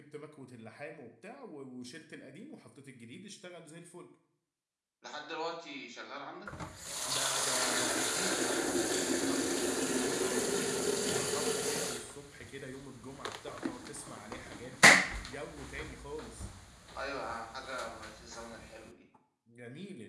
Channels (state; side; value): identical; both; correlation 1.00